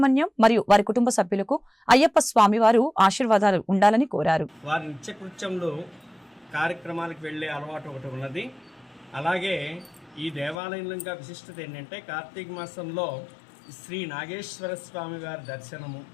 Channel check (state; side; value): drops out; right; at 10.6 s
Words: మరియు వారి కుటుంబ సభ్యులకు అయ్యప్ప స్వామి వారు ఆశీర్వాదాలు ఉండాలని కోరారు. వారి నిత్యకృత్యంలో కార్యక్రమాలకు వెళ్లే అలవాటు ఒకటి ఉన్నది. అలాగే ఈ దేవాలయంలో విశిష్టత ఏంటంటే కార్తీక మాసంలో శ్రీ నాగేశ్వర స్వామి వారి దర్శనము,